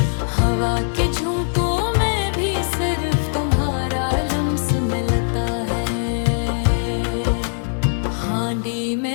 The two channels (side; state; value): right; silent; 61 dB below the other